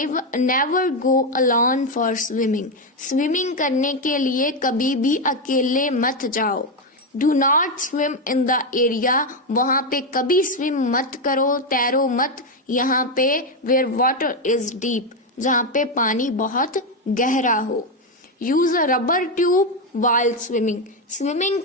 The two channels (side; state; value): both; normal; correlation 0.08